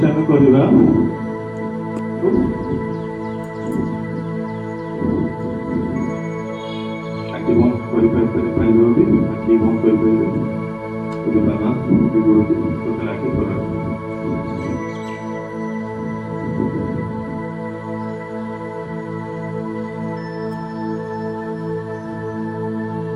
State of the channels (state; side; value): identical; both; correlation 1.00